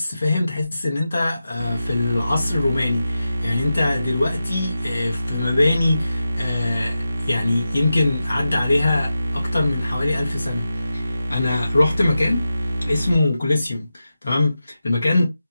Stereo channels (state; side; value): inverted; both; correlation -0.91